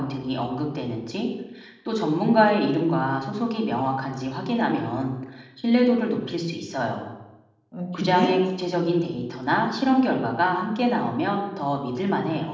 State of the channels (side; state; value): both; identical; correlation 1.00